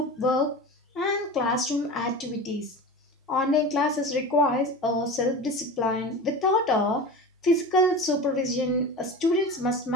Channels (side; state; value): both; normal; correlation 0.31